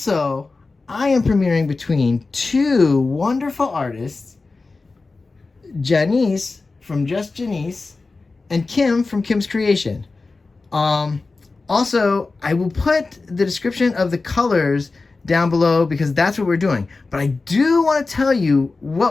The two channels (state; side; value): quieter; right; 3.8 dB